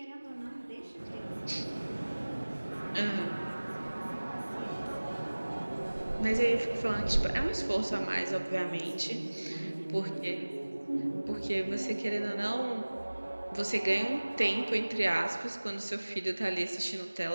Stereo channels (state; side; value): inverted; both; correlation -1.00